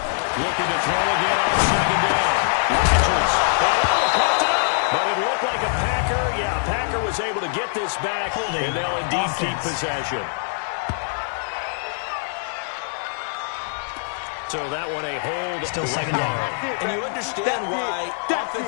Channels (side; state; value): right; silent; digital silence